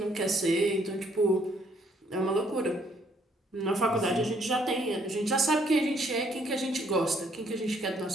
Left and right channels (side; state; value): both; normal; correlation 0.67